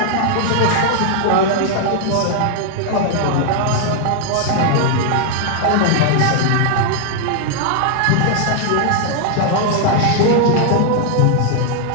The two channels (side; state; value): both; different; correlation 0.00